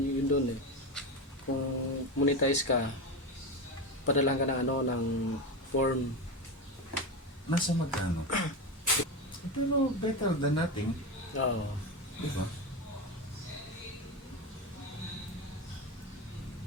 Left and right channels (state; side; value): normal; both; correlation 0.18